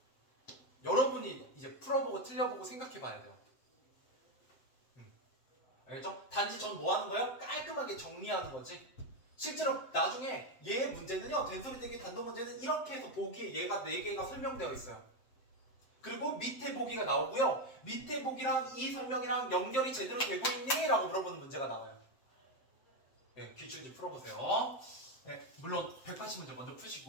여러분이 이제 풀어보고 틀려보고 생각해봐야 돼요. 알겠죠? 단지 전 뭐 하는 거예요? 깔끔하게 정리하는 거지. 실제로 나중에 얘 문제는요, 된소리 대기 단독 문제는 이렇게 해서 보기에 얘가 4개가 설명되어 있어요. 그리고 밑에 보기가 나오고요. 밑에 보기랑 이 설명이랑 연결이 제대로 되고 있니? 라고 물어보는 문제가 나와요. 네, 기출지 풀어보세요. 네, 물론 180문제 먼저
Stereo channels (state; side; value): late; right; 7.8 ms